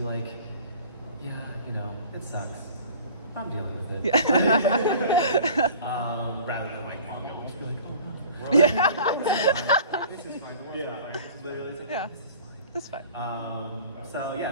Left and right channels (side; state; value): both; inverted; correlation -0.46